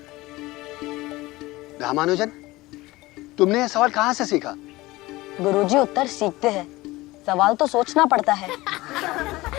रामानुजन, तुमने यह सवाल कहाँ से सीखा? गुरुजी, उत्तर सीखते हैं, सवाल तो सोचना पड़ता है।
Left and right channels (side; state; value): right; quieter; 19.8 dB